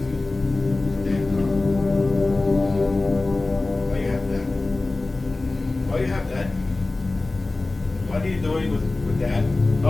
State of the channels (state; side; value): quieter; right; 3.1 dB